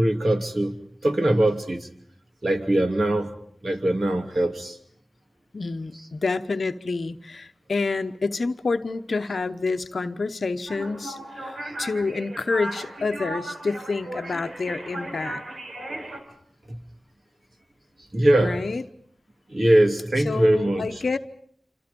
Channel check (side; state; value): both; normal; correlation 0.95